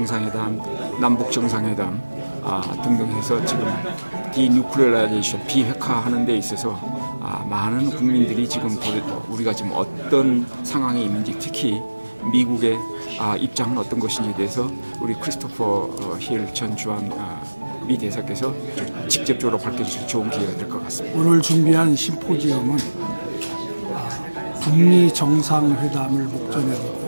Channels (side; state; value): both; inverted; correlation -1.00